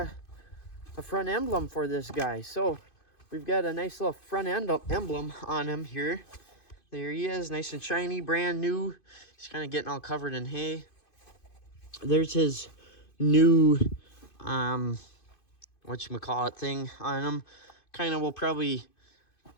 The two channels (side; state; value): right; late; 2.5 ms